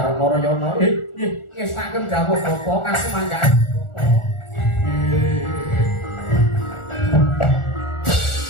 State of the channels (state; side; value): late; right; 1.4 ms